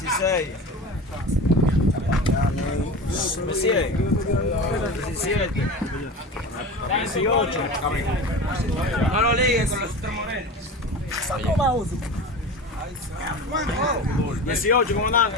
Me sigue. 17. 18. No lo ligues con los tres morenos. 18,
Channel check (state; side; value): normal; both; correlation 0.31